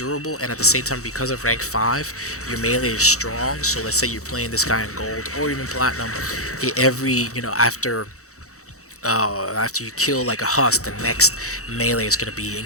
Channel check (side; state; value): right; late; 0.65 ms